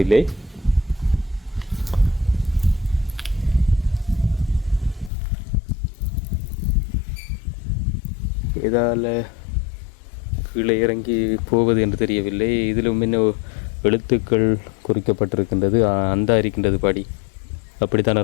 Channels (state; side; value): drops out; right; at 5.1 s